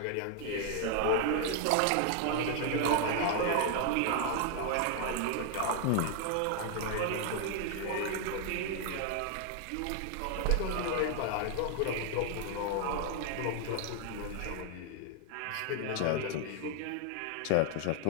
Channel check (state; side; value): different; both; correlation 0.00